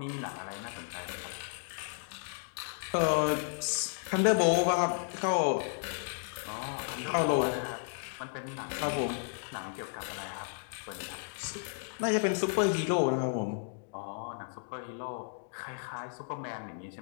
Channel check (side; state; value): right; silent; digital silence